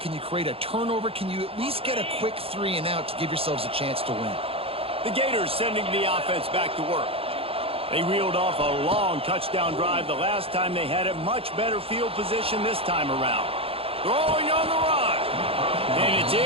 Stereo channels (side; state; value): left; late; 0.27 ms